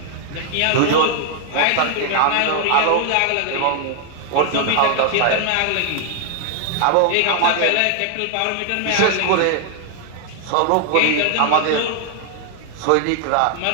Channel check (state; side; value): different; both; correlation 0.00